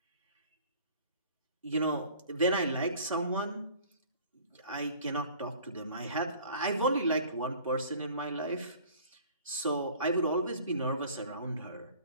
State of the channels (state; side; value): inverted; both; correlation -0.49